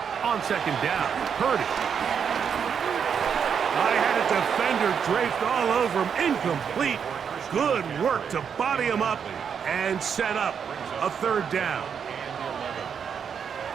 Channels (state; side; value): quieter; left; 7.2 dB